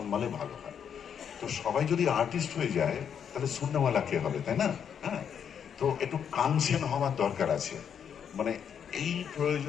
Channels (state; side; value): quieter; right; 8.0 dB